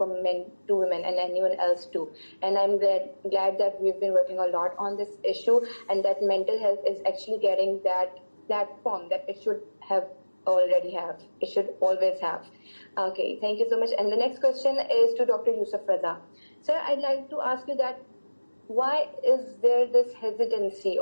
men to women and anyone else too. And I'm glad that we've been working a lot on this issue, and that mental health is actually getting that platform that it should always have. Okay, thank you so much. And the next question is to Dr. Yusuf Raza. Sir, I'd like to ask you that why is there this hesitancy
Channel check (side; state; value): both; inverted; correlation -1.00